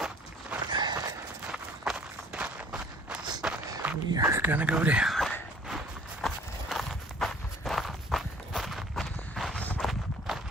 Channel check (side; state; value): both; normal; correlation 0.52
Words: We are gonna go down.